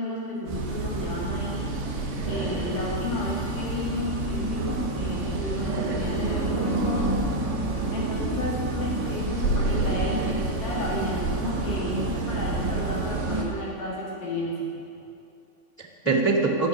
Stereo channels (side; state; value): right; late; 3.5 ms